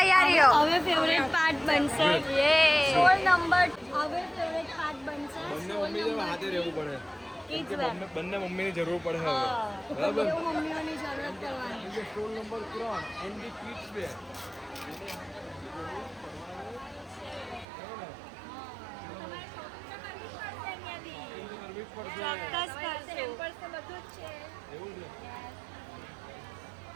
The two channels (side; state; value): left; drops out; at 17.7 s